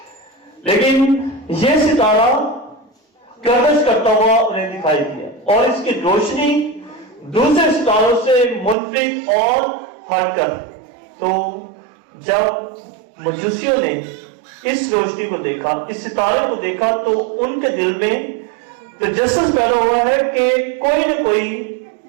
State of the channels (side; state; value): left; drops out; at 8.8 s